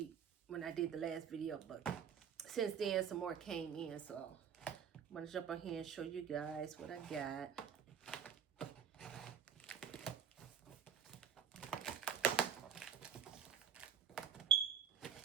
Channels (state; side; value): quieter; left; 8.0 dB